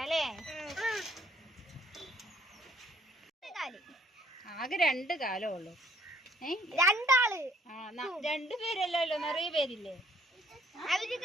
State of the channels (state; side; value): normal; both; correlation 0.62